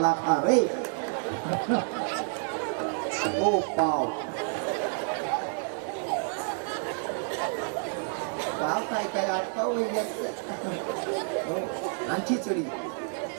खा रे ओ पाव पाव काय काय आत पाव वही घ्या. आणि खिचडी.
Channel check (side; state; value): left; silent; 58 dB below the other